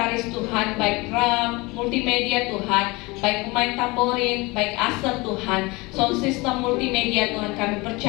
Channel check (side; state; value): right; quieter; 24.3 dB